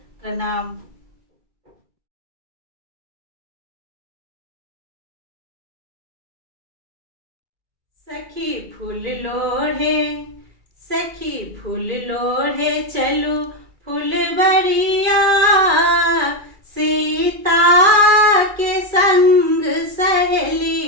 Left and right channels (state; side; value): late; left; 2.3 ms